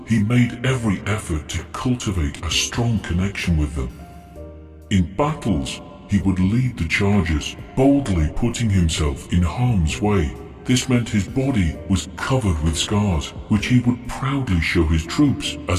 he made every effort to cultivate a strong connection with them. In battles, he would lead the charges, boldly putting himself in harm's way. This meant his body was covered with scars, which he would proudly show his troops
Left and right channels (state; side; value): identical; both; correlation 1.00